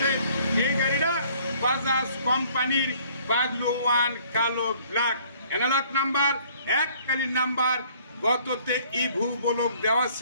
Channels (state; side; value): inverted; both; correlation -0.59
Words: এই গাড়িটা বাজাজ কোম্পানির বাগলু ওয়ান কালো ব্ল্যাক অ্যানালগ নাম্বার, এককালীন নাম্বার। গততে ইভু বলক দেওয়া